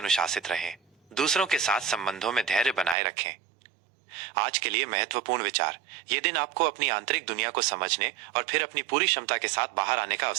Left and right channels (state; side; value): drops out; left; at 3.0 s